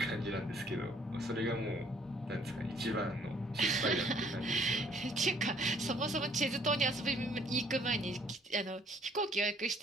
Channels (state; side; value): normal; both; correlation 0.61